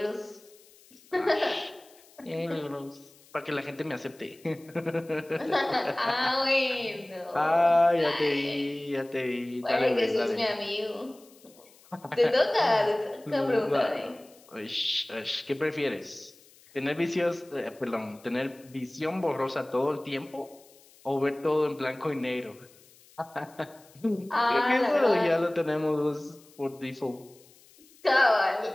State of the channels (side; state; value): left; noise; hiss, 26 dB below the sound